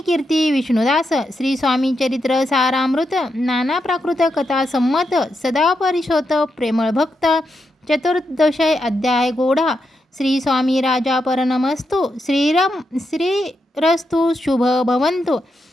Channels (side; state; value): both; normal; correlation 0.84